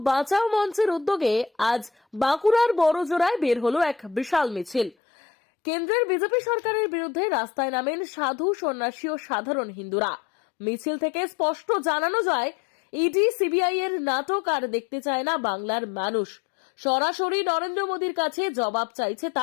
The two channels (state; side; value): drops out; right; at 5.0 s